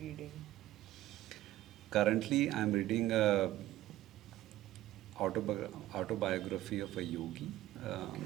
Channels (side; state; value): left; quieter; 15.1 dB